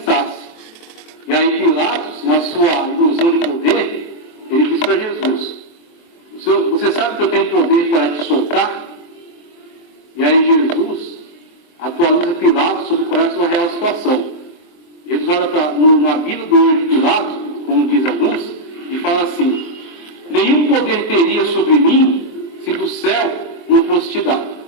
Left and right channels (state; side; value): late; right; 23 ms